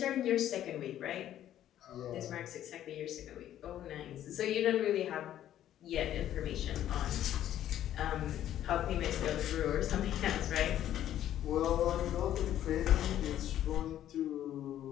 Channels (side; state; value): right; quieter; 11.7 dB